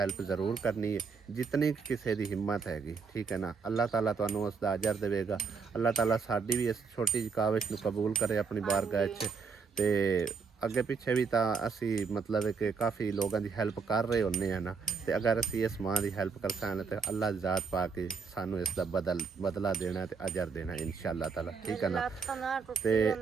ਜ਼ਰੂਰ ਕਰਨੀ ਹੈ, ਜਿਤਨੀ ਕਿਸੇ ਦੀ ਹਿੰਮਤ ਹੈਗੀ, ਠੀਕ ਹੈ ਨਾ। ਅੱਲਾਹ ਤਾਲਾ ਤੁਹਾਨੂੰ ਉਸ ਦਾ ਅਜਰ ਦੇਵੇਗਾ। ਅੱਲਾਹ ਤਾਲਾ ਸਾਡੀ ਵੀ ਇਸ ਛੋਟੀ ਜਿਹੀ ਕਾਵਿਸ਼ ਨੂੰ ਕਬੂਲ ਕਰੇ ਆਪਣੀ ਬਾਰਗਾਹ 'ਚ। ਤੇ ਅੱਗੇ ਪਿੱਛੇ ਵੀ ਤਾਂ ਅਸੀਂ ਮਤਲਬ ਕਿ ਕਾਫੀ ਲੋਕਾਂ ਦੀ ਹੈਲਪ ਕਰ ਰਹੇ ਹੁੰਦੇ ਆ ਨਾ, ਤੇ ਅਗਰ ਅਸੀਂ ਇਸ ਮਾਂ ਦੀ ਹੈਲਪ ਕਰ ਸਕਦੇ ਤੇ ਅੱਲਾਹ ਦੀ ਜ਼ਾਤ ਪਾ ਕੇ ਸਾਨੂੰ ਇਸ ਦਾ ਬਦਲਾ ਦੇਣਾ ਤੇ ਅਜਰ ਦੇਣਾ ਇਨਸ਼ਾਅੱਲਾ ਤਾਲਾ, ਠੀਕ ਹੈ ਨਾ। ਤੇ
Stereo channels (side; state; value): left; quieter; 5.4 dB